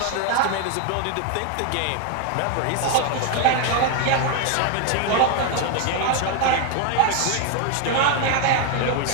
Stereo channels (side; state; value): both; different; correlation 0.01